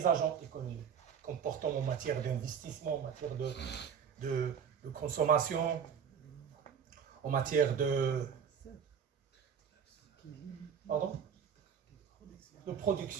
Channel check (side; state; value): left; quieter; 7.4 dB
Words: agents économiques. Comportements en matière d'investissement, en matière de consommation, en matière de